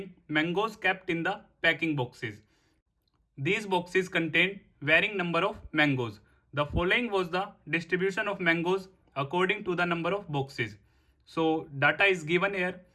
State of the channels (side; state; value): both; identical; correlation 1.00